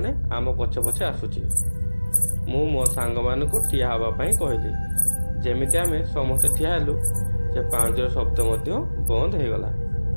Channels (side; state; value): both; inverted; correlation -1.00